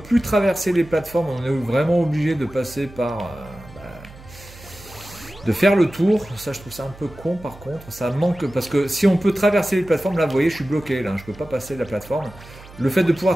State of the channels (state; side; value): noise; right; hum, 19 dB below the sound